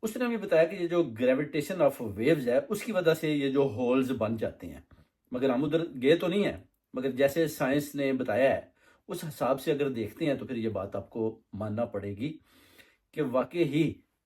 اس نے بھی بتایا کہ یہ جو گریویٹیشن آف ویوز ہے اس کی وجہ سے یہ جو ہولز بن جاتے ہیں، مگر ہم ادھر گئے تو نہیں ہیں، مگر جیسے سائنس نے بتایا ہے اس حساب سے اگر دیکھتے ہیں تو پھر یہ بات آپ کو ماننا پڑے گی کہ واقعی ہی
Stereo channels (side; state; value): both; identical; correlation 1.00